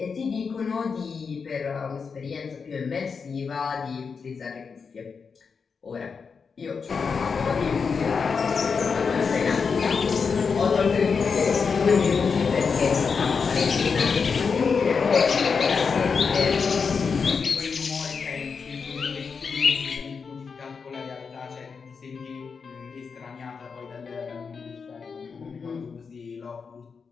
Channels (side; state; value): right; quieter; 5.5 dB